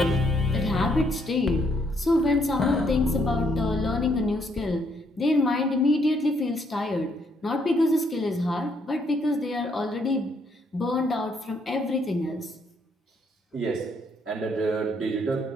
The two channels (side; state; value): both; normal; correlation 0.71